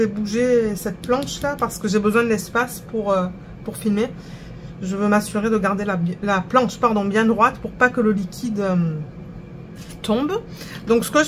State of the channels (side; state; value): both; identical; correlation 1.00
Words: bouger cette planche-là, parce que j'ai besoin de l'espace pour filmer, je veux m'assurer de garder la planche bien droite pour pas que le liquide... tombe. Donc ce que